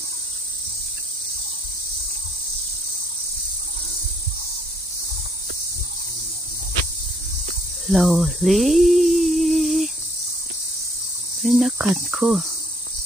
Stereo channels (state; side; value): normal; both; correlation 0.66